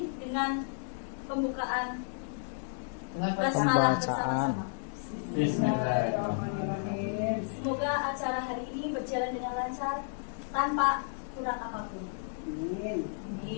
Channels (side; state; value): right; silent; digital silence